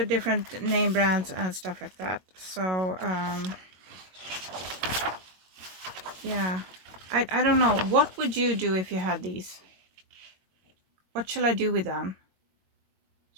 name brands and stuff like that. So yeah, I don't know. What would you do if you had these? What shall I do with them?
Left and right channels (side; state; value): left; late; 22 ms